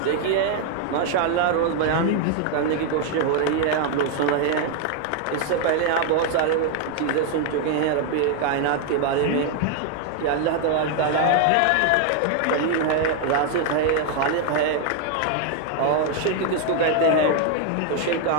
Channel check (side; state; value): both; different; correlation 0.00